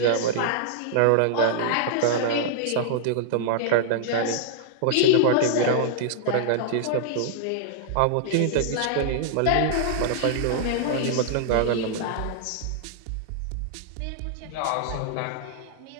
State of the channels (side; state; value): both; different; correlation -0.01